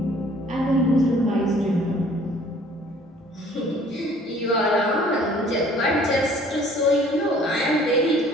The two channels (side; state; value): both; normal; correlation 0.54